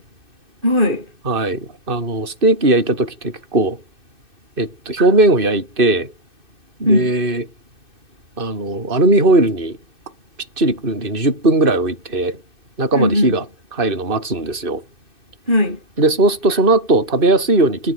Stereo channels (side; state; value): left; late; 2.6 ms